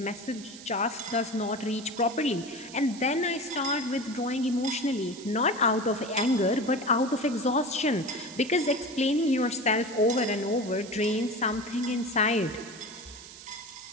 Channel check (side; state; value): right; noise; hiss, 16 dB below the sound